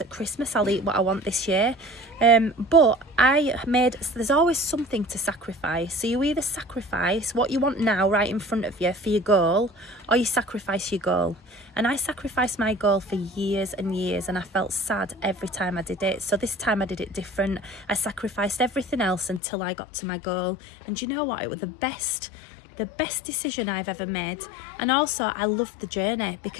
at Christmas. I'll eat what I want this year. But there's always something to sacrifice. So you either sacrifice what you want now right in front of you for your goal, or you sacrifice your goal. And I sacrificed my goal for years and years, and I felt sad every time I did it. So this time I did it different. I sacrificed everything else until I got to my goal. And you know what? It was the best decision I've ever made. And also I loved the journey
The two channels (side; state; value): right; drops out; at 19.4 s